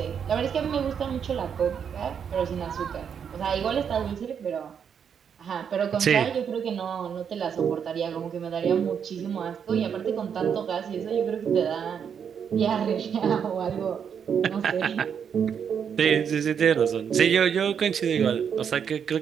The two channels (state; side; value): quieter; left; 7.5 dB